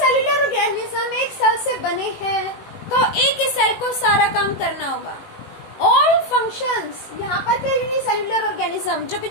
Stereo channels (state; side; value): late; right; 18 ms